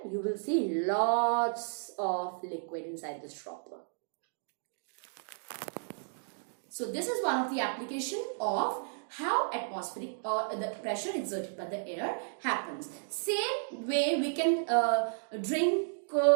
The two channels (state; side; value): silent; left; digital silence